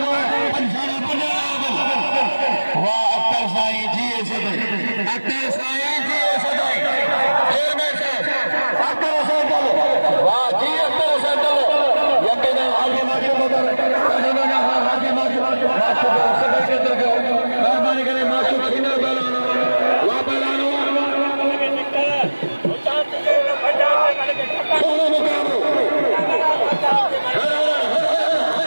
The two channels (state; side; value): inverted; both; correlation -1.00